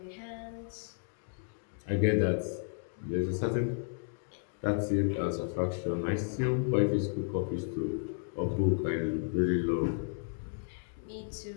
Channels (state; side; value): silent; right; digital silence